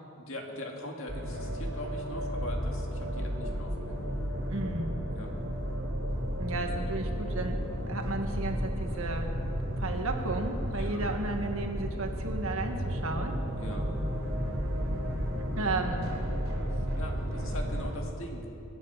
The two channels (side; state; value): both; normal; correlation 0.62